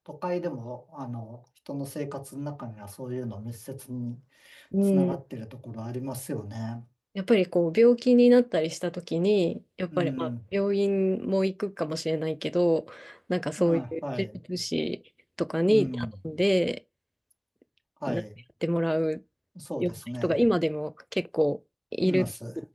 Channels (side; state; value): both; identical; correlation 1.00